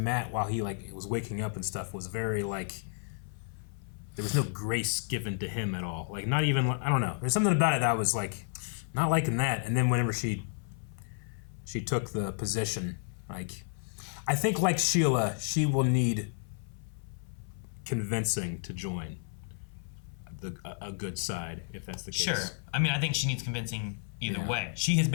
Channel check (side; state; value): right; silent; 55 dB below the other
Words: while he like was waking up and stuff was very like there was no grace given to him at all. Like not even I don't know. There's something about it that I was like not liking that. And then whenever she took the position, like I think like Sheila, she will need convincing to join a good side if that's the case. Sure. I mean, I think she needs convincing either way. She has